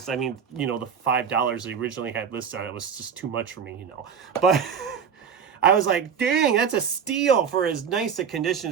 I mean, you know, the $5 they originally had listed on it was just too much for me, you know. But I was like, dang, that's a steal for as nice a condition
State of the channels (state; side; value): quieter; left; 7.0 dB